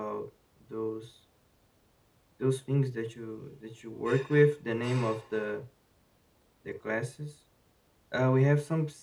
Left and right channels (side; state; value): both; identical; correlation 1.00